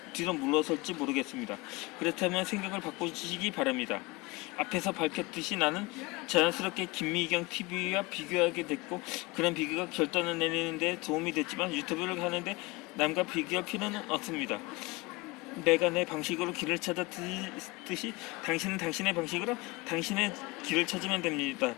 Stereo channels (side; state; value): right; quieter; 23.6 dB